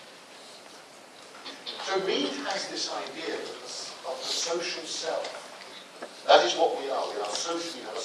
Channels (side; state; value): both; identical; correlation 1.00